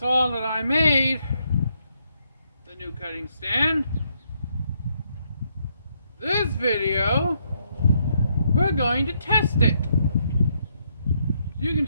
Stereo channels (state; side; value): inverted; both; correlation -0.75